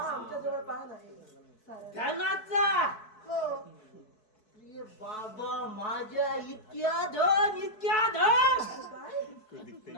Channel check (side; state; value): right; late; 4.6 ms